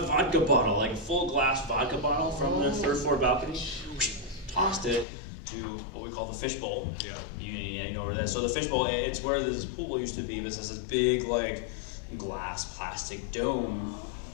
bottle, like a full glass vodka bottle from the 3rd floor balcony. Tossed it to what we call the fishbowl. Yeah. You know where that is. So the fishbowl, it's where this pool used to be, but it has this big like glass plastic dome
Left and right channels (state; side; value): drops out; right; at 5.1 s